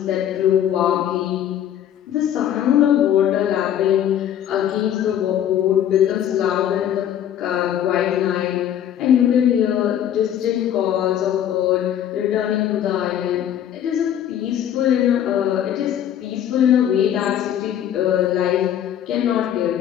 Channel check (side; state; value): right; quieter; 10.4 dB